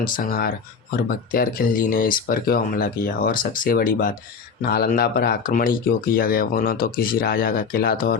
और बख्तियार खिलजी ने इस पर क्यों हमला किया, और सबसे बड़ी बात, नालंदा पर आक्रमण ही क्यों किया गया। वो न तो किसी राजा का किला था और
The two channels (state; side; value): quieter; right; 5.7 dB